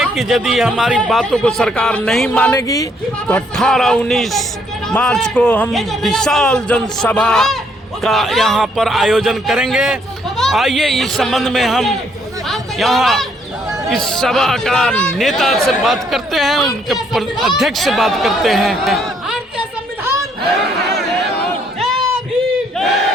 कि यदि हमारी बातों को सरकार नहीं मानेगी तो 18-19 मार्च को हम विशाल जनसभा का यहाँ पर आयोजन करेंगे। आइए इस संबंध में हम यहाँ इस सभा का नेता से बात करते हैं, उनके अध्यक्ष से बात करते हैं।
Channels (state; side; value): normal; both; correlation 0.69